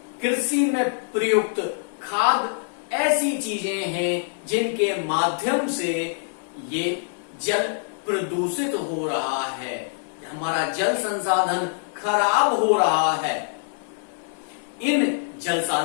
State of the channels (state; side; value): silent; right; digital silence